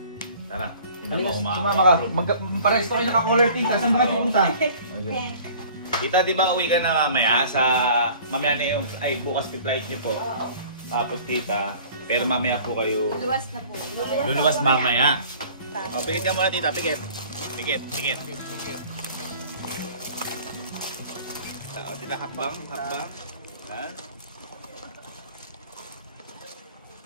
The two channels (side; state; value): both; inverted; correlation -0.48